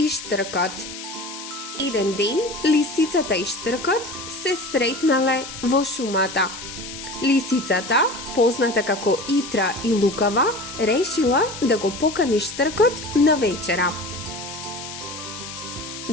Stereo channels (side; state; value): left; noise; hiss, 11 dB below the sound